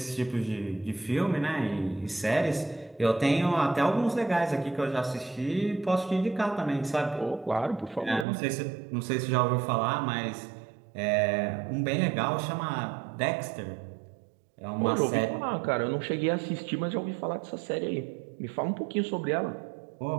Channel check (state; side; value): drops out; left; at 8.2 s